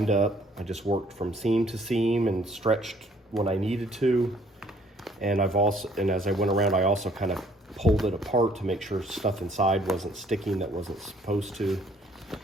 up. I just worked from seam to seam and stretched when I needed to. And as I went around, I also kind of pulled it apart to make sure stuff inside wasn't sticking that wasn't supposed to.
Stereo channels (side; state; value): both; normal; correlation 0.61